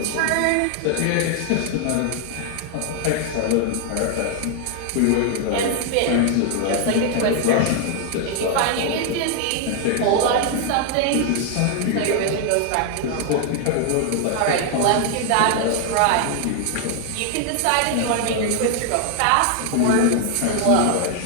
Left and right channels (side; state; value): both; different; correlation 0.00